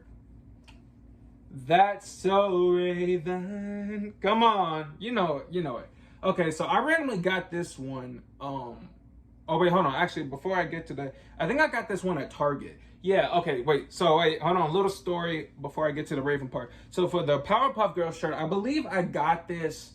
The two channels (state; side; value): identical; both; correlation 1.00